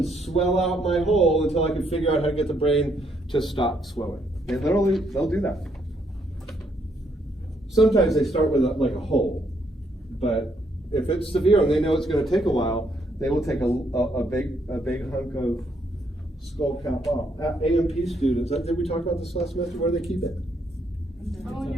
swell out my hole until I can figure out how to get the brain to stop swelling. And literally, they'll do that. Sometimes they start with like a hole, but if it's severe and they know it's going to take a while, they will take a big hunk of skull cap off. AMP students, did we talk about this last semester? Where do they keep it? Oh, in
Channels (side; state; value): both; normal; correlation 0.73